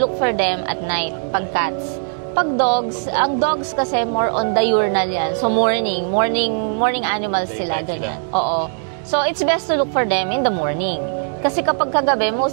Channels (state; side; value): silent; left; digital silence